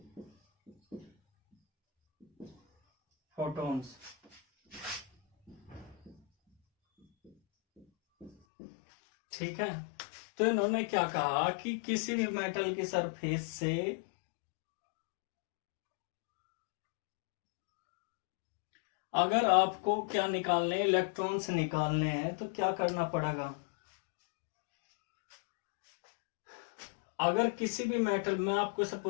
photons। ठीक है, तो इन्होंने क्या कहा कि किसी भी मेटल की सरफेस से अगर आपको क्या निकालने, इलेक्ट्रॉन्स निकालने हैं, तो क्या करना पड़ेगा? अगर किसी भी मेटल में, आपको इसे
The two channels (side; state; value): right; drops out; at 8.3 s